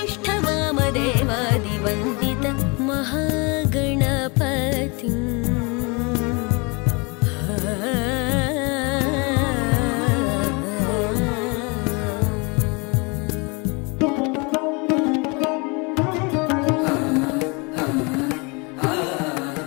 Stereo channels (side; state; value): right; quieter; 29.7 dB